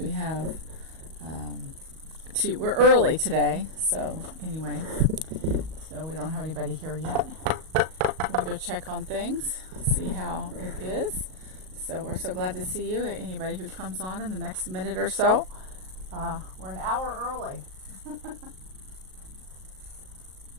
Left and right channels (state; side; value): late; left; 38 ms